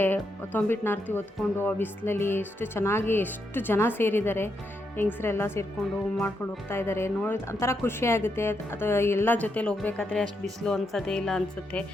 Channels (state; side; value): normal; both; correlation 0.81